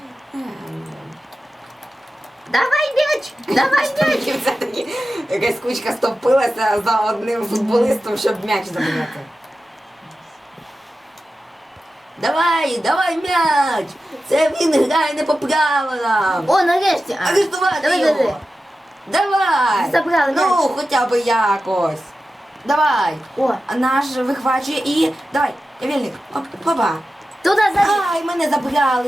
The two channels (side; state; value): both; normal; correlation 0.93